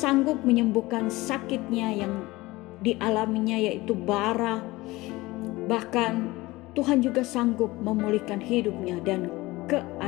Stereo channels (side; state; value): right; quieter; 20.3 dB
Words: menyembuhkan sakitnya yang dialaminya, yaitu bara. Bahkan Tuhan juga sanggup memulihkan hidupnya dan